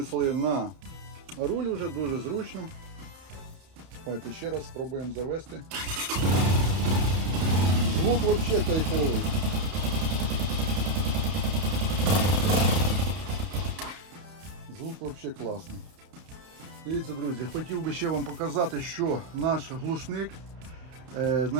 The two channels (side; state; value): left; late; 31 ms